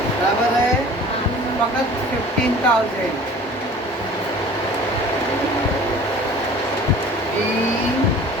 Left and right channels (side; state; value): both; normal; correlation 0.45